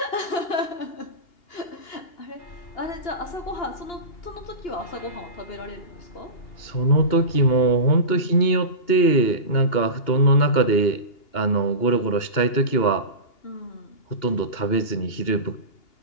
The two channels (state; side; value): late; right; 2.8 ms